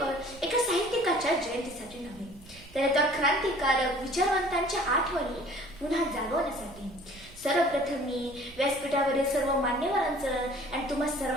एका साहित्यिकाच्या जयंतीसाठी नव्हे, तर एका क्रांतिकारक विचारवंतांच्या आठवणी पुन्हा जागवण्यासाठी. सर्वप्रथम मी व्यासपीठावरील सर्व मान्यवरांचं आणि तुम्हा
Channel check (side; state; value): right; noise; rumble, 22 dB below the sound